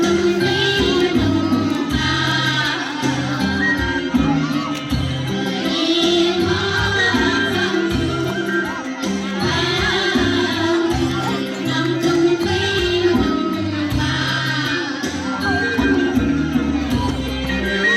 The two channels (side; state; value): both; identical; correlation 1.00